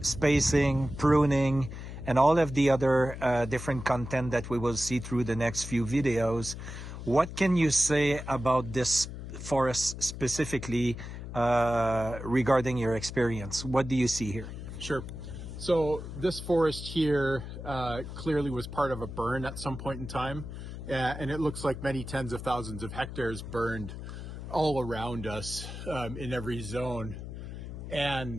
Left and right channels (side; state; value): left; noise; hum, 9 dB below the sound